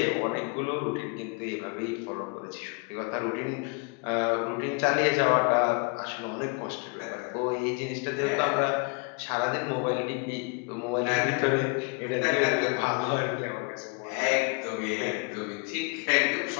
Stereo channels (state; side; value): quieter; right; 32.0 dB